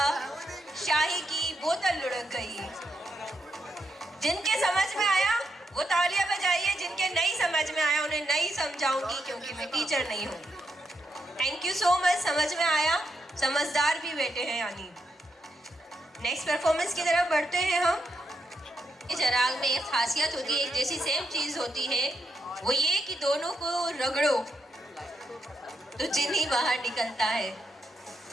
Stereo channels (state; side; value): normal; both; correlation 0.81